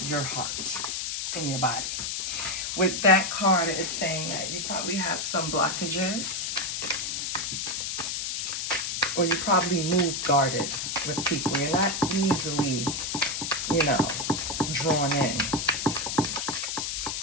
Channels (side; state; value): left; noise; hiss, 2 dB below the sound